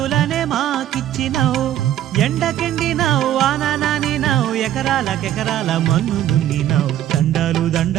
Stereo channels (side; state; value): left; quieter; 12.0 dB